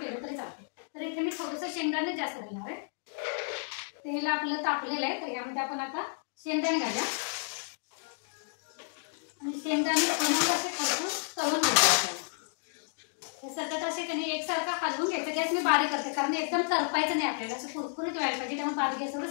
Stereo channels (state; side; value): silent; right; 57 dB below the other